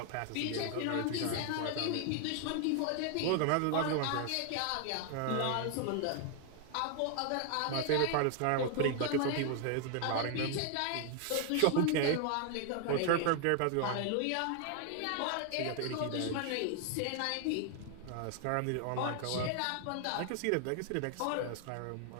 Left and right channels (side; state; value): both; different; correlation 0.00